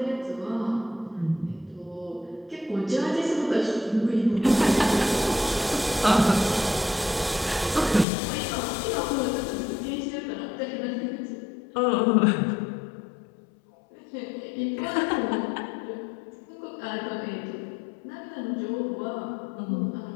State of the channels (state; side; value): drops out; right; at 8.1 s